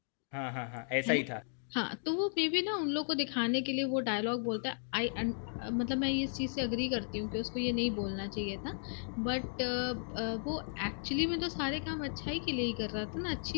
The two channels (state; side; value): silent; right; digital silence